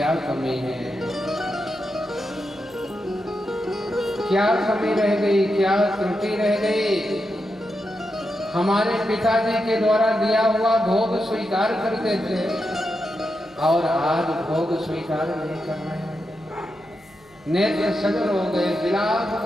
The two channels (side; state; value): left; noise; hum, 30 dB below the sound